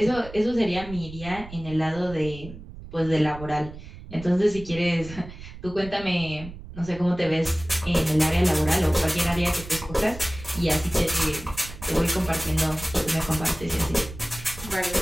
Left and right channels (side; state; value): right; noise; rumble, 14 dB below the sound